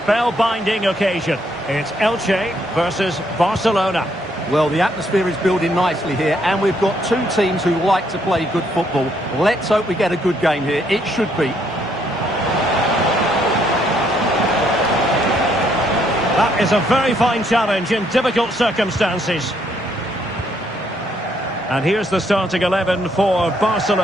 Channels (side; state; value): both; normal; correlation 0.71